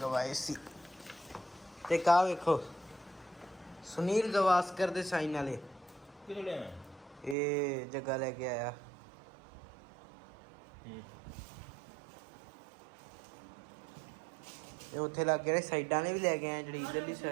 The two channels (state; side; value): drops out; left; at 7.4 s